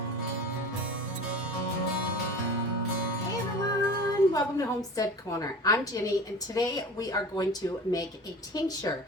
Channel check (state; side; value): normal; both; correlation 0.37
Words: everyone, welcome to Homestead Corner. I'm Jenny, and today we are going to make a tincture,